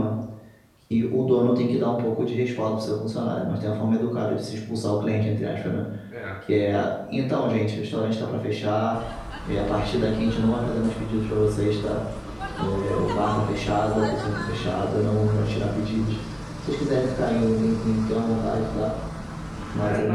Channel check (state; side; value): identical; both; correlation 1.00